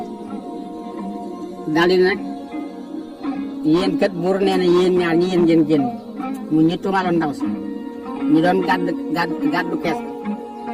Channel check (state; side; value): identical; both; correlation 1.00